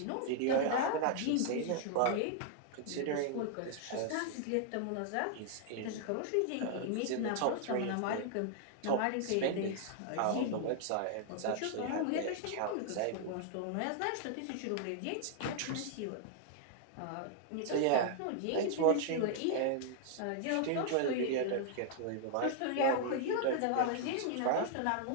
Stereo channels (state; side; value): different; both; correlation -0.01